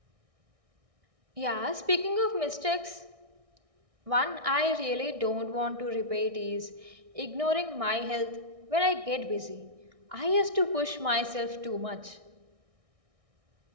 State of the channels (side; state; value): left; late; 1.6 ms